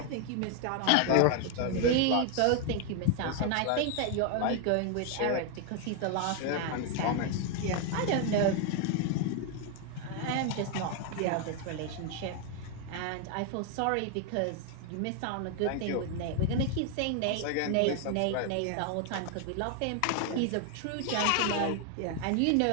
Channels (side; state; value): both; different; correlation 0.01